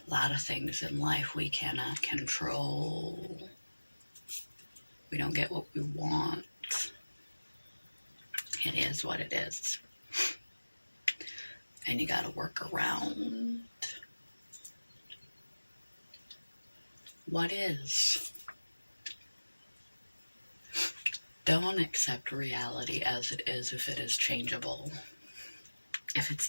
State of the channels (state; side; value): inverted; both; correlation -1.00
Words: A lot of things in life we cannot control. We don't get what we want. It is what it is. And you gotta work around what is. Don't accept reality as it is if it is changeable. If it's